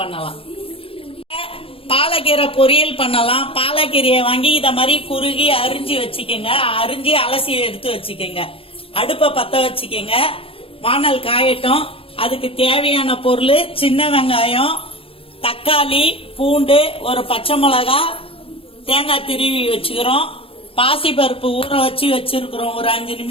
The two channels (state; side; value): late; right; 0.27 ms